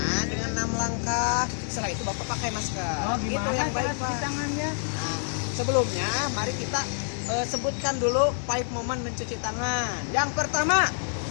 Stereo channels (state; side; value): silent; right; digital silence